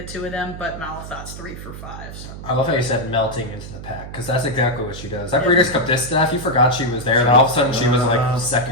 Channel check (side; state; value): right; noise; hum, 12 dB below the sound